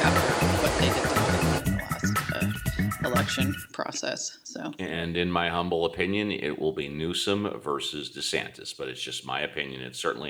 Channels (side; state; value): both; identical; correlation 1.00